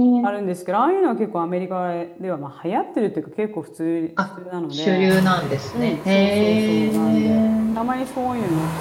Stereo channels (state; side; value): identical; both; correlation 1.00